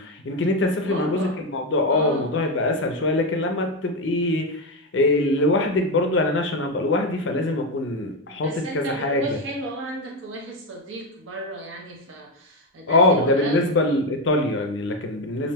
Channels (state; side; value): normal; both; correlation 0.11